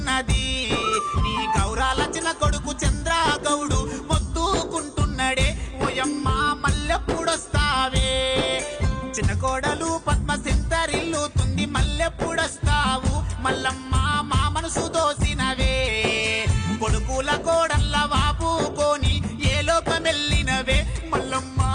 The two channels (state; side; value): identical; both; correlation 1.00